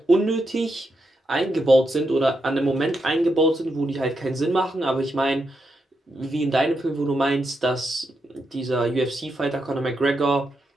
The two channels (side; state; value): both; normal; correlation 0.84